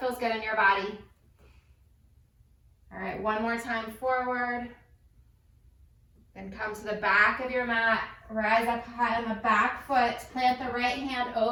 good in your body. All right, one more time forward. Then come to the back of your mat. Rise up high on the back foot. Plant the right hand,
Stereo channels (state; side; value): identical; both; correlation 1.00